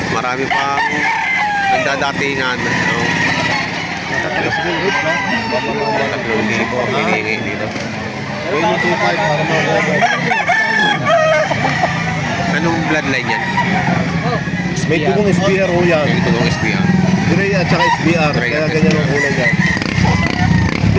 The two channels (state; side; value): identical; both; correlation 1.00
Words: Marami pang nagdadatingan. No? 3,000 hinihingi dito. Anong bloodline yan? May tugong SBR ho yan. Ito ng SBR. Gray at saka SBR. Gray Kaya at ganyan SBR. ang kulay yan.